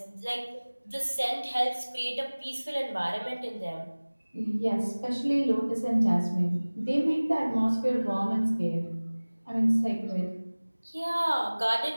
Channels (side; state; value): both; inverted; correlation -1.00